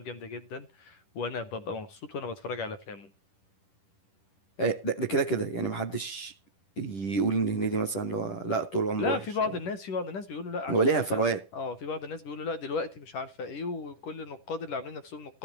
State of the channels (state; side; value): late; right; 10 ms